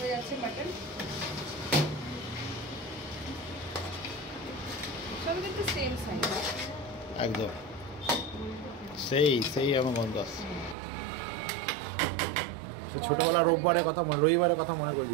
যাচ্ছে মাটন, সব কিন্তু সেম সাইজ, একদম সেই সেই আমার গন্ধ আসছে। সে ছোটবেলা রবিবারের কথা মনে করে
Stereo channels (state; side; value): drops out; left; at 10.8 s